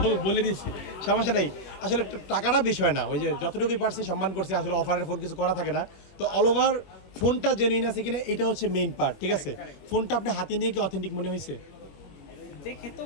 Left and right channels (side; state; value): right; late; 21 ms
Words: বলে দিচ্ছি, সমস্যা নেই। আসলে টাকাটা বিষয় না, ওই যে যতটুকুই পারছি সম্মান করছি। আসলে অফারের ফোন কিছু করা থাকে না, তো অল ওভার ফোনটা জেনুইন আছে কিনা এটা হচ্ছে মেইন পার্ট, ঠিক আছে? ফোনটা আপনি হাতে নিয়ে কি অথেন্টিক মনে হয়েছে? দেখে তো